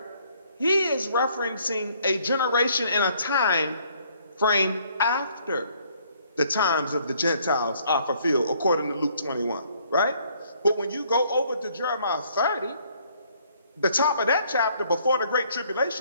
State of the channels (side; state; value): both; inverted; correlation -0.64